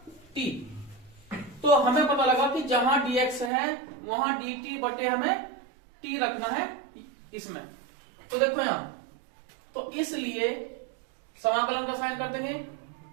t। तो हमें पता लगा कि जहां dx है वहां dt बटे हमें t रखना है इसमें। तो देखो यहां, तो इसलिए समाकलन का साइन कर देंगे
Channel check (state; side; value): drops out; left; at 3.5 s